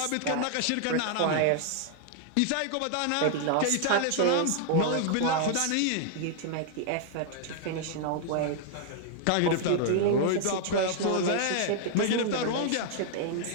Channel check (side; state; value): both; different; correlation 0.00